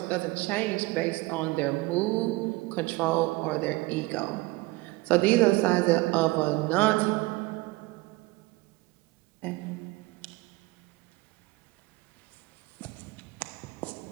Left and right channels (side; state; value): left; quieter; 21.6 dB